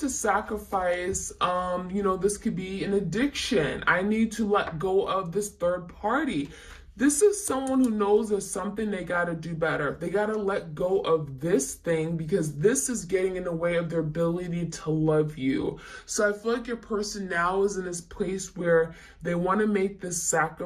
sacrifice, you know, this could be an addiction. I need to let go of this third party. This is someone who knows there's something they got to do better. They got to let go of this thing because this is getting in the way of their ability to love you. So I feel like your person now is in this place where they want to make this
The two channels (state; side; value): identical; both; correlation 1.00